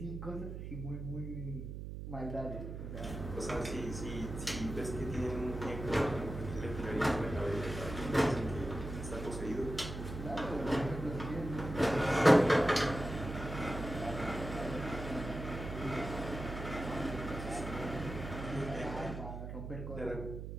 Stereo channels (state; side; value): noise; right; hum, 7 dB below the sound